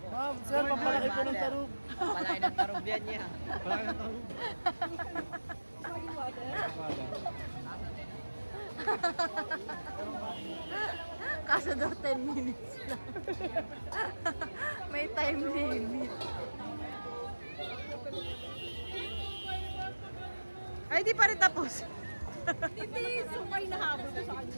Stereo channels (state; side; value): inverted; both; correlation -1.00